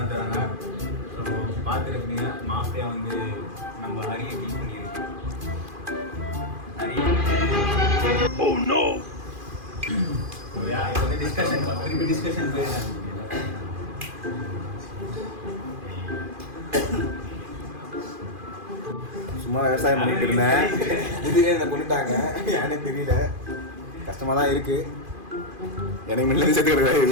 தராங்க. ஸோ பார்த்துருக்கீங்க மாஃபியா வந்து நம்ம ஹரியை கில் பண்ணியிருக்கு. ஹரி சரியா இது வந்து டிஸ்கஷன் திருப்பி டிஸ்கஷன் போயிடலாம். சும்மா விவசாயம் பண்ணிட்டு இருந்தேன், திடீர்னு என்னை கொண்டுட்டாங்க, ஏன்னே தெரியல. கஷ்டமா தான் இருக்கு. எனக்கு முன்னாடி சேர்த்து கிடக்குறா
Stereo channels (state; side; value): late; left; 2.5 ms